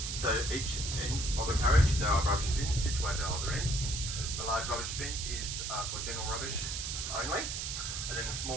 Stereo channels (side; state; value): right; noise; hiss, 4 dB below the sound